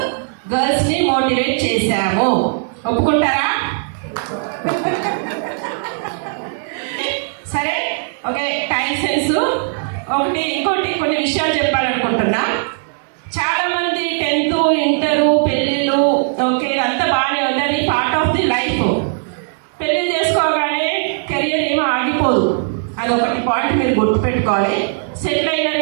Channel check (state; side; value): silent; left; digital silence